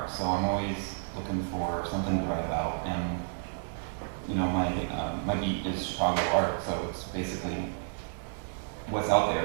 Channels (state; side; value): silent; left; digital silence